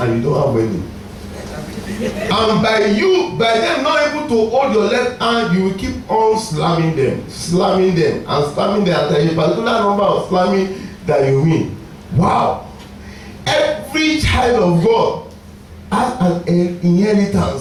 you don't have any. And by them not able to hold your left hand, you will keep on slamming them, and slamming them. And there is a particular number of slamming that you win. Wow. Every child of God has an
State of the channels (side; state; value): both; identical; correlation 1.00